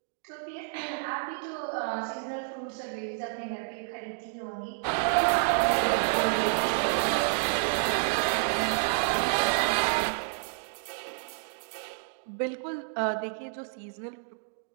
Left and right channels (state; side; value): silent; left; digital silence